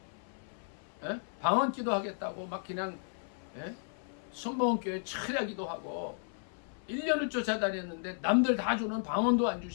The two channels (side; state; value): right; silent; 55 dB below the other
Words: 방언 기도하겠다고 막 그냥 순복음교회 철야 기도하고 1년을 쫓아다녔는데 남들 다 주는 방언도 안